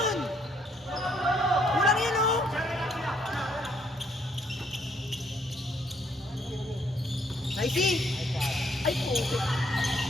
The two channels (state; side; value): normal; both; correlation 0.69